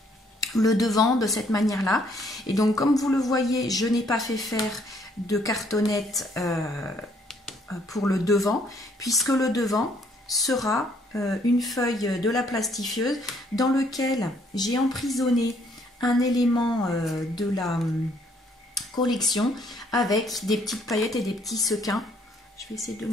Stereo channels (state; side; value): normal; both; correlation 0.65